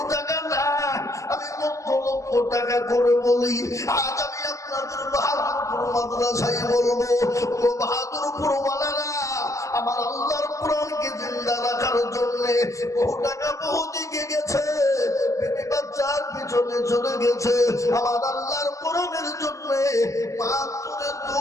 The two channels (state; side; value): late; right; 0.15 ms